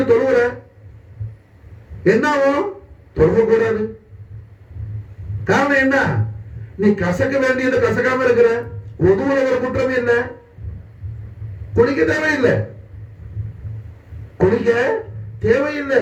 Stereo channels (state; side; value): identical; both; correlation 1.00